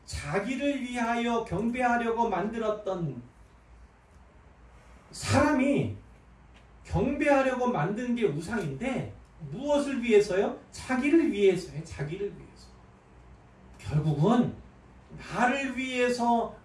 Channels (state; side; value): identical; both; correlation 1.00